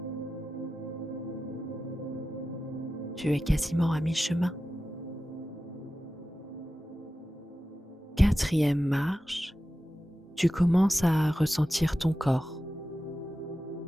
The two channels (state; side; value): normal; both; correlation 0.93